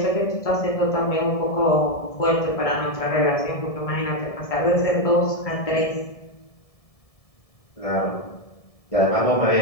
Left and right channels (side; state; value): right; late; 1.7 ms